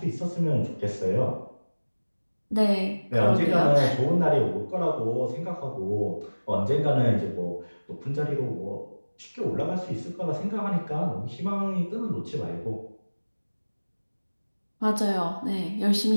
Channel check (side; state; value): both; inverted; correlation -1.00